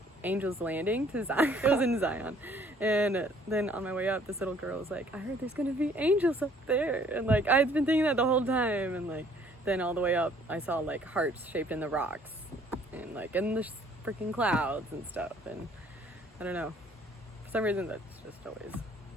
Angel's Landing to Zion. It was in Zion. And then on my way up, this little girl was like, I heard there's going to be angels up there. And, like, I'd been thinking that the whole time. And, like, then all the way up, I saw, like, hearts shaped in the rocks. And, like, in the freaking clouds and stuff. And I don't know. For some reason, that's just always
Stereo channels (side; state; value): both; normal; correlation 0.59